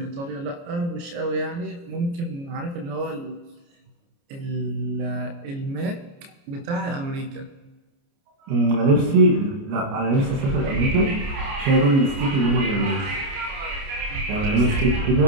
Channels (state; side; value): late; left; 29 ms